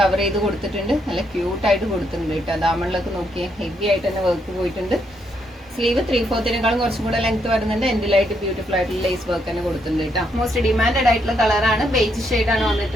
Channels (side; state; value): both; normal; correlation 0.76